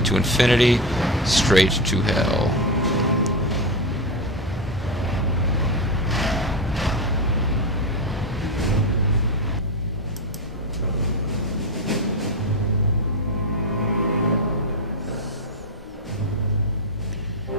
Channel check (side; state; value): both; normal; correlation 0.12